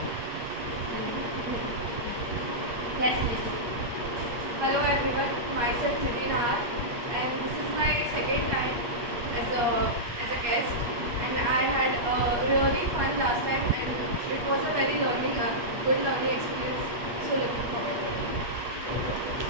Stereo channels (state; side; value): late; left; 8.5 ms